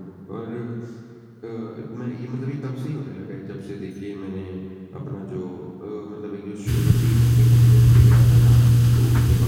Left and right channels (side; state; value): both; identical; correlation 1.00